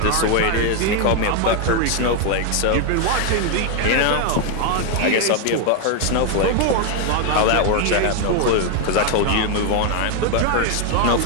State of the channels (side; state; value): both; different; correlation 0.01